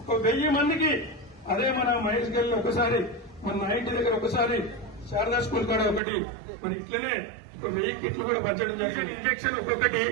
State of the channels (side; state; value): left; drops out; at 6.0 s